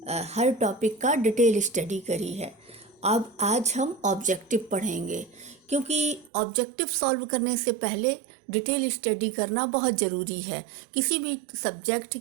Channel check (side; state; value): left; drops out; at 6.3 s